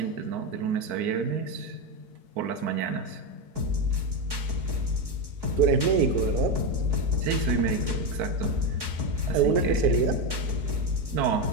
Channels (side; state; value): left; late; 4.7 ms